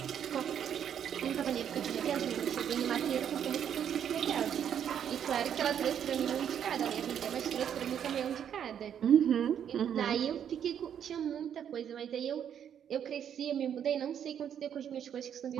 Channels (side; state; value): left; quieter; 9.0 dB